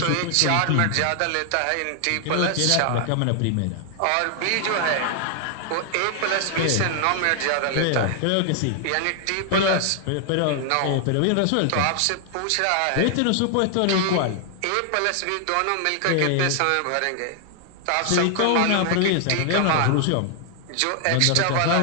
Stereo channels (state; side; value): different; both; correlation 0.00